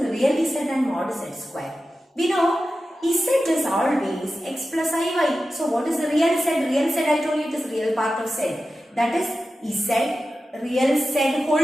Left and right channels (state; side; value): normal; both; correlation 0.93